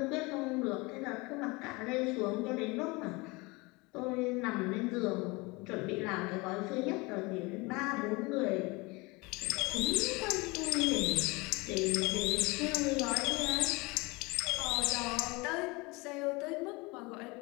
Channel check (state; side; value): quieter; right; 25.2 dB